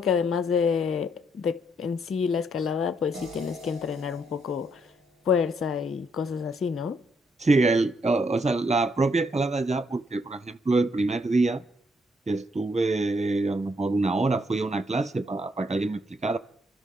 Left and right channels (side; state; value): both; normal; correlation 0.73